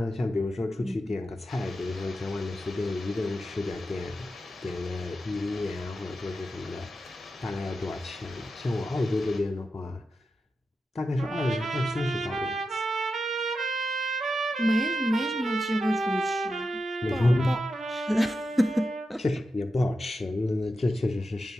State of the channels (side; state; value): both; normal; correlation 0.89